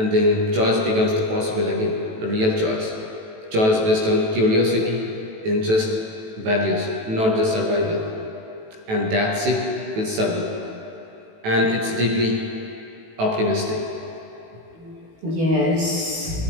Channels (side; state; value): left; late; 18 ms